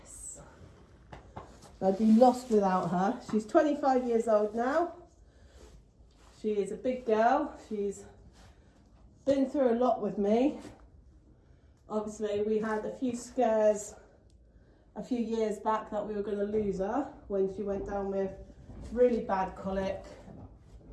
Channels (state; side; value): identical; both; correlation 1.00